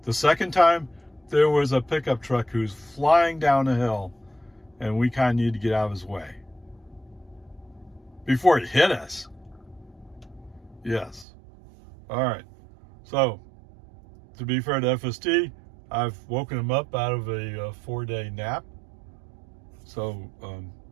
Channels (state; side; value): drops out; left; at 11.2 s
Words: The second time, there was a pickup truck who's flying down a hill, and we kind of need to get out of his way before he hit us. Yes. All right. So, to be fair to FSD, I've woken him up out of a 4-day nap. So,